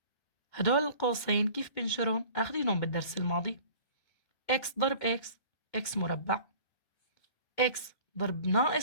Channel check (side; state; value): right; late; 2.2 ms